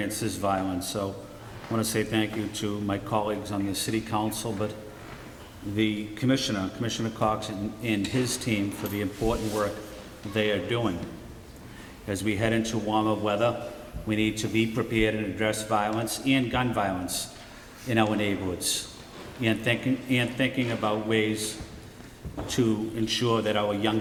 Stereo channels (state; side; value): identical; both; correlation 1.00